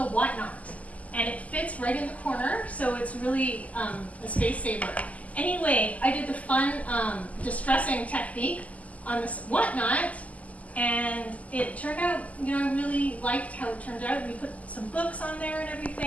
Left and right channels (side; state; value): right; late; 0.072 ms